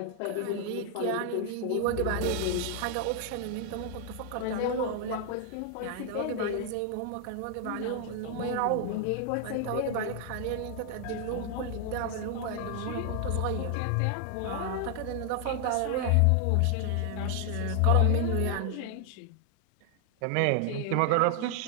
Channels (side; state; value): both; different; correlation 0.00